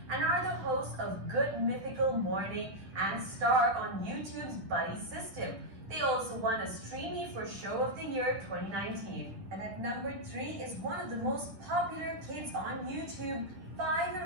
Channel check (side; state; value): left; late; 10 ms